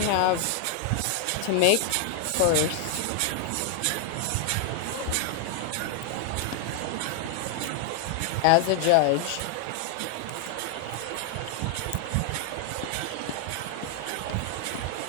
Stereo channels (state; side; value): different; both; correlation 0.00